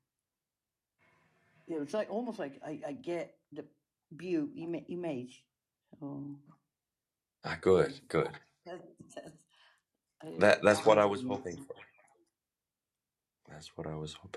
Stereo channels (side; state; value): both; identical; correlation 1.00